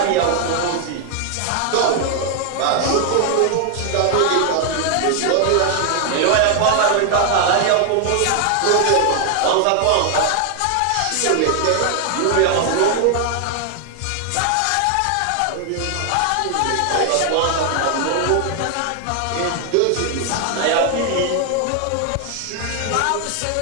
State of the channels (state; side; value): different; both; correlation 0.00